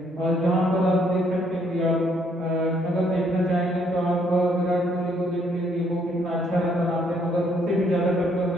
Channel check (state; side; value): normal; both; correlation 0.69